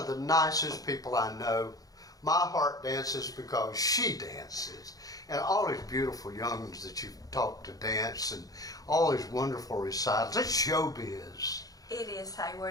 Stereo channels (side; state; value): right; late; 0.18 ms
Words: the nicest people I know. My heart dances because she dances. And all these beautiful young'uns that you've taught to dance and all these wonderful recitals. It's showbiz. It is,